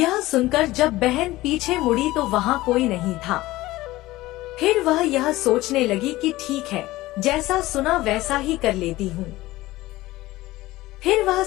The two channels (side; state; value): right; quieter; 17.9 dB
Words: सुनकर जब बहन पीछे मुड़ी तो वहाँ कोई नहीं था। फिर वह यह सोचने लगी कि ठीक है, जैसा सुना वैसा ही कर लेती हूँ। फिर वह